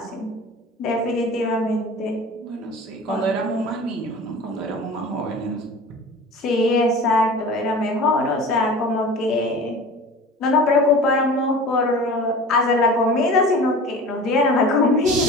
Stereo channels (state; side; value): normal; both; correlation 0.38